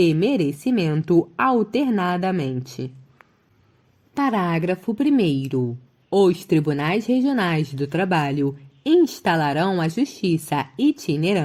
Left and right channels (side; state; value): both; identical; correlation 1.00